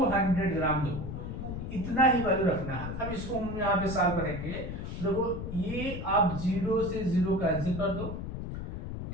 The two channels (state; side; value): noise; left; rumble, 6 dB below the sound